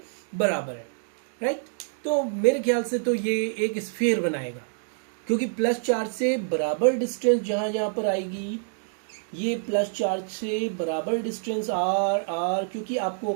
बराबर है, राइट। तो मेरे ख्याल से तो ये एक स्फीयर बनाएगा, क्योंकि प्लस चार्ज से बराबर डिस्टेंस जहां जहां पर आएगी, ये प्लस चार्ज से बराबर डिस्टेंस आर आर, क्योंकि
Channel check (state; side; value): silent; left; digital silence